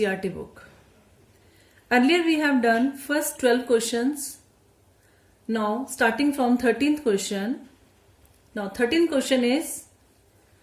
book. Earlier we have done first 12 questions. Now starting from 13th question. Now 13th question is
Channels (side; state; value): both; identical; correlation 1.00